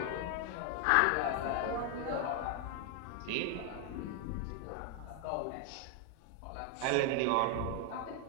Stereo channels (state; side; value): different; both; correlation 0.01